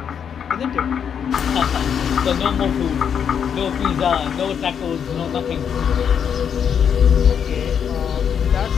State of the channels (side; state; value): right; quieter; 7.8 dB